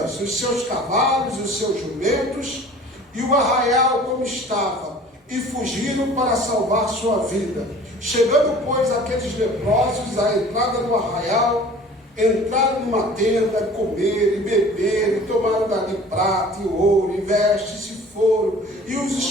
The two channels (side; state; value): both; normal; correlation 0.46